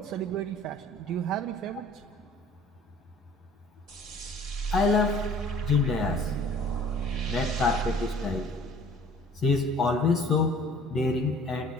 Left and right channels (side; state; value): both; normal; correlation 0.52